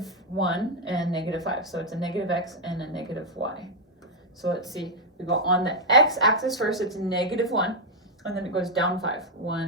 and -5. So it's a -X and a -Y. So let's see, we go on the X axis first, it's -1, and then it goes down 5.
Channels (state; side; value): normal; both; correlation -0.01